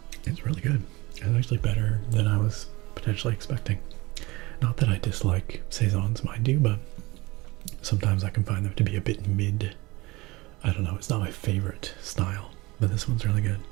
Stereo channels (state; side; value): quieter; left; 22.2 dB